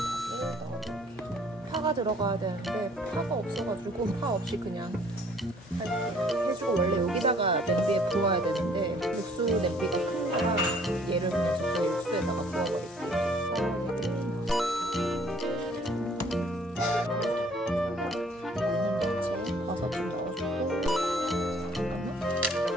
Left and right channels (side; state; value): both; normal; correlation 0.58